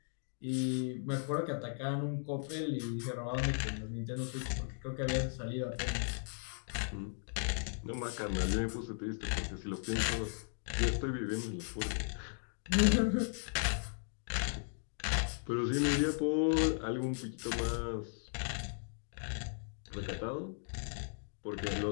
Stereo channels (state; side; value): silent; right; digital silence